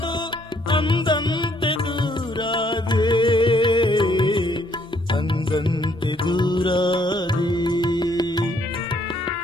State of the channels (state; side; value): normal; both; correlation 0.68